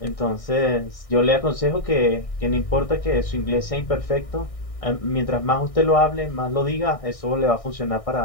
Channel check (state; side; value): late; right; 1.6 ms